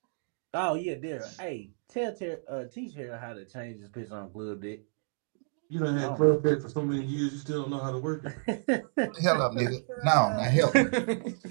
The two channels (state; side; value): silent; left; 58 dB below the other